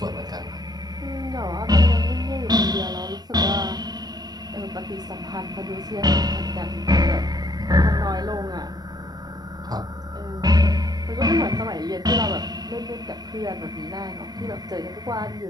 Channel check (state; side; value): late; left; 0.19 ms